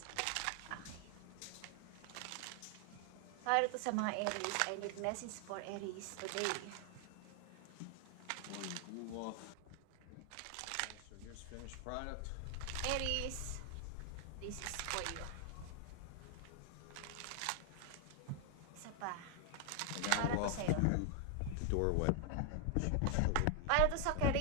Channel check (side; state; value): both; different; correlation 0.00